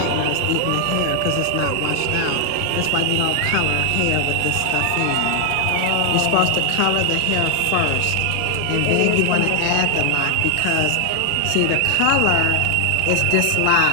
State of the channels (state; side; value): different; both; correlation 0.00